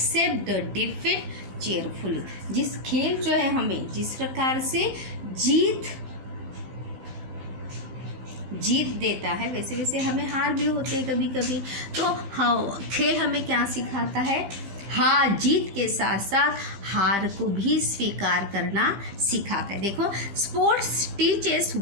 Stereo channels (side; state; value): left; late; 15 ms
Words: the defeat cheerfully. जिस खेल जो है हमें जिस प्रकार से जीत देता है, वैसे वैसे हमें हार भी होते हैं कभी कभी। तो हाँ, खेल हमें क्या सिखाता है, हाँ, जीत के साथ साथ हार को भी स्वीकार करना सिखाता है। देखो, sports teaches